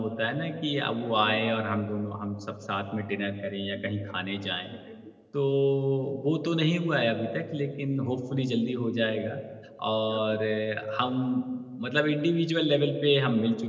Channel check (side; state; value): both; identical; correlation 1.00